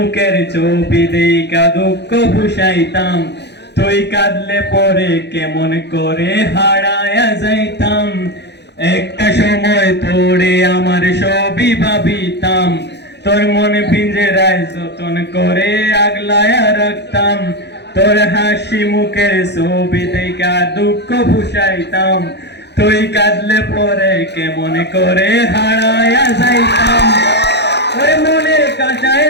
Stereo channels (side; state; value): right; late; 0.50 ms